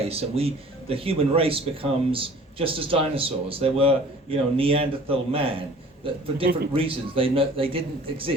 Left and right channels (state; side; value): normal; both; correlation 0.49